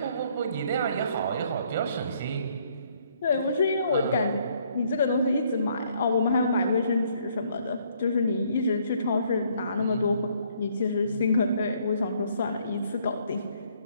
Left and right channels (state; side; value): inverted; both; correlation -0.66